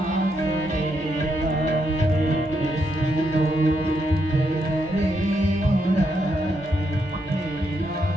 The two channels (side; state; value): both; normal; correlation 0.79